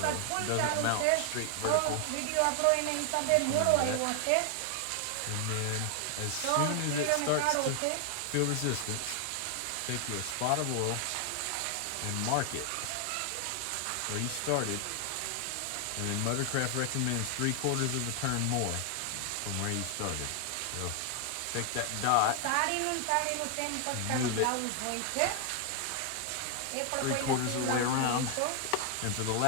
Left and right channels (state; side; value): different; both; correlation 0.00